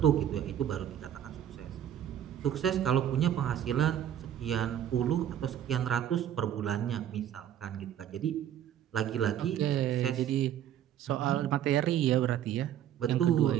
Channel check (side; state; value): left; quieter; 10.7 dB